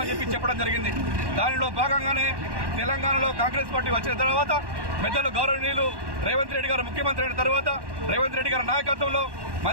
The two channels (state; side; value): late; left; 1.1 ms